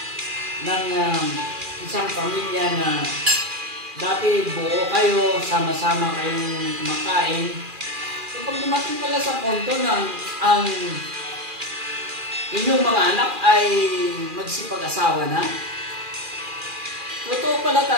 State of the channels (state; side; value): late; left; 2.4 ms